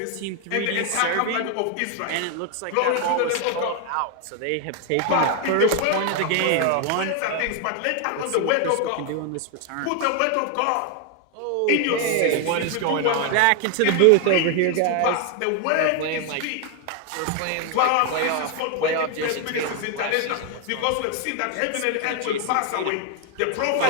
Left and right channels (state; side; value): different; both; correlation 0.01